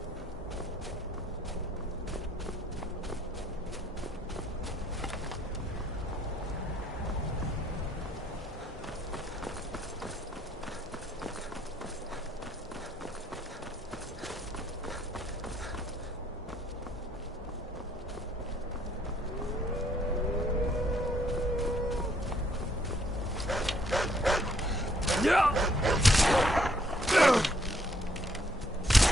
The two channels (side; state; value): both; normal; correlation 0.67